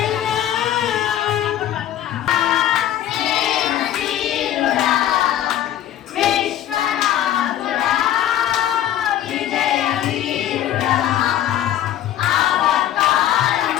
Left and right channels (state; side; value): quieter; right; 11.8 dB